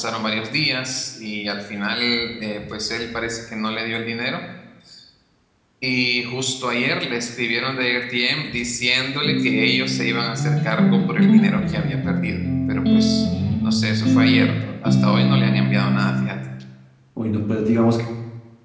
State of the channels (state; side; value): identical; both; correlation 1.00